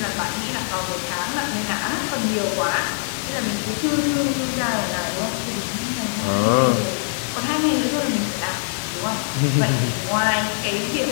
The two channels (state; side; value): silent; right; digital silence